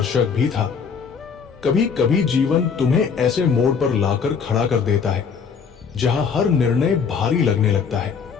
भी था। कभी कभी जीवन तुम्हें ऐसे मोड़ पर लाकर खड़ा कर देता है जहां हर निर्णय भारी लगने लगता है।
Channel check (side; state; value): right; quieter; 6.1 dB